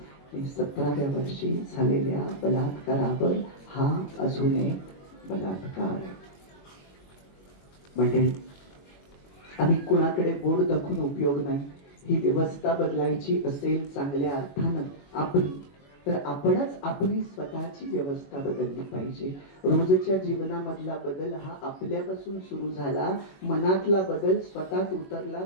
17व्या वर्षी झालेल्या बलात्कारावर हा अजून एक बलात्कार. म्हणजे आम्ही कुणाकडे बोट दाखवून उपयोग नाही. ही व्यवस्था बदलायची असेल चांगल्या अर्थानं आपली, तर आपणच आपली स्वतःची व्यवस्था बदलली पाहिजे. रोजच्या जीवनामधला बदल हा आपल्यापासून सुरू झाला. मनातला बदल स्वतःत उतरला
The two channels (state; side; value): late; right; 21 ms